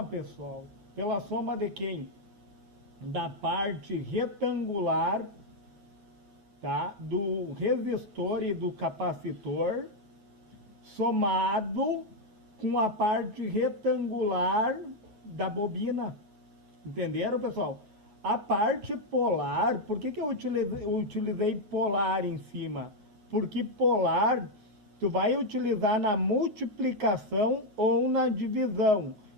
pessoal. Pela soma de quem? Da parte retangular, tá? Do resistor e do capacitor, somado com a parte retangular da bobina. Entenderam, pessoal? A parte polar, por que eu utilizei polar em cima? Porque polar tu vai utilizar na multiplicação ou na divisão,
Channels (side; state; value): left; late; 9.4 ms